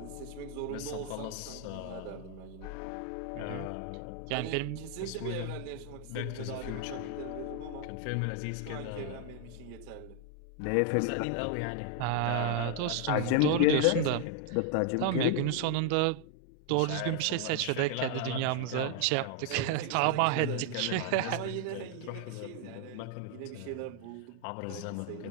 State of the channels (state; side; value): different; both; correlation 0.00